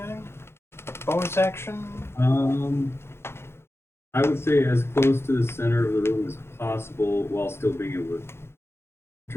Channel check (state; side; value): late; right; 0.12 ms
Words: Bonus action? I would say as close to the center of the room as possible while still being able to